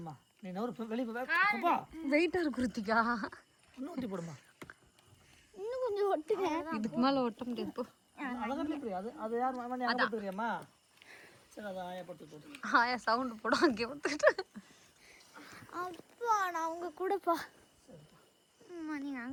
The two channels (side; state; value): both; identical; correlation 1.00